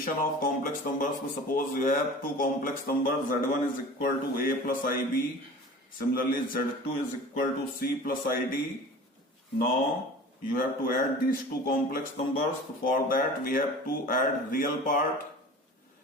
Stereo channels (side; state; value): both; normal; correlation 0.40